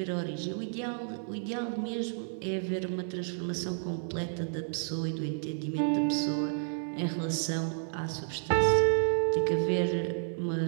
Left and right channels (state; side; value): silent; left; digital silence